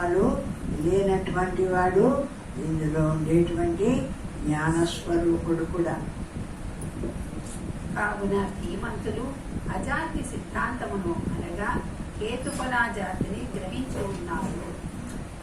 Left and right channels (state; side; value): identical; both; correlation 1.00